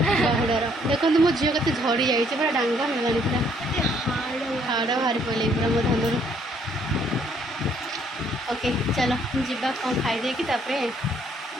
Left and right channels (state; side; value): normal; both; correlation 0.66